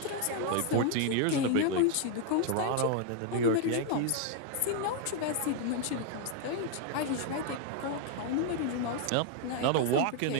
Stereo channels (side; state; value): both; different; correlation 0.00